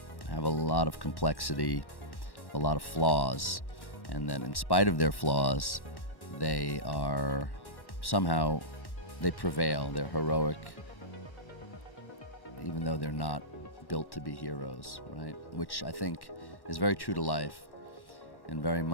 a lot of complexity, a lot of flaws, and that in spite of their flaws, they are somehow, they prevail, they're heroic, even though they're not built to be heroes, right? Which I think is very true to life and very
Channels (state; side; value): late; right; 1.1 ms